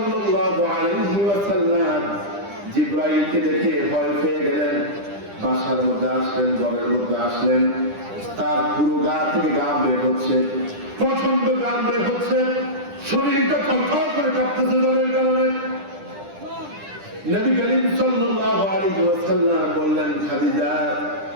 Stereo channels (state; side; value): late; left; 10 ms